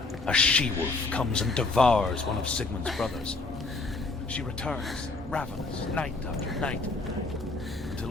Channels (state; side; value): quieter; right; 3.5 dB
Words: a she-wolf comes and devours one of Sigmund's brothers. She returns, ravenous, night after night, until